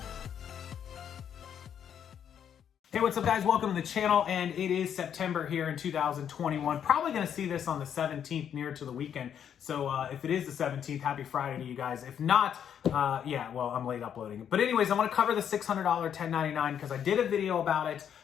Hey, what's up guys? Welcome to the channel, and it is September here in 2021. Probably going to see this on the 17th, near to the weekend. So if it is the 17th, happy Friday to you guys. If not, yeah, well, I'm late uploading. But anyways, I want to cover the $600 1099 because I did a video about it,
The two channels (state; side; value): quieter; right; 8.8 dB